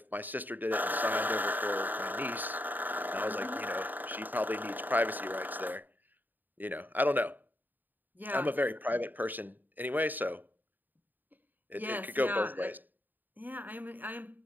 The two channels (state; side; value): late; left; 0.088 ms